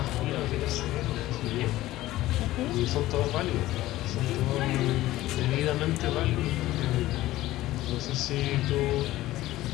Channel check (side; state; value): right; quieter; 16.2 dB